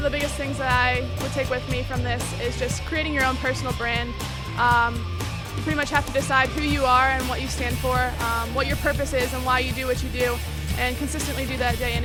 the biggest things that I would take with me from this is just creating your own personal brand. You pretty much have to decide who you are and what you stand for, what your purpose is and why you do what you do, and consistently do that day in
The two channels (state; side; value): identical; both; correlation 1.00